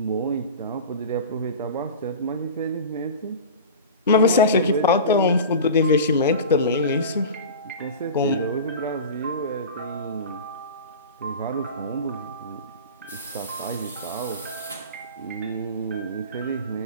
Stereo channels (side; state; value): both; inverted; correlation -0.32